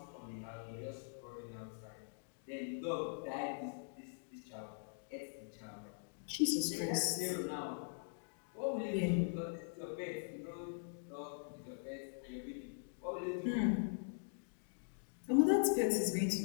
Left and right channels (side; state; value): right; silent; digital silence